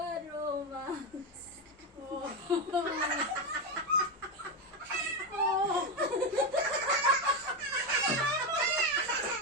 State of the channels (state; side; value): normal; both; correlation 0.10